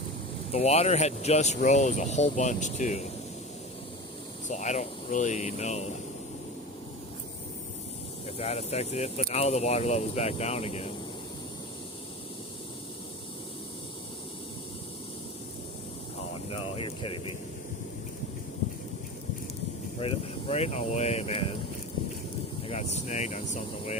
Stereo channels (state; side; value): normal; both; correlation 0.30